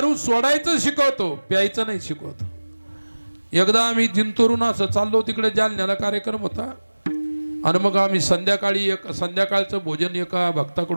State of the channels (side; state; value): both; inverted; correlation -1.00